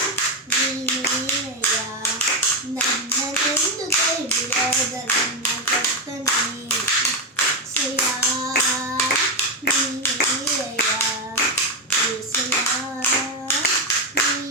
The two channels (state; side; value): normal; both; correlation 0.09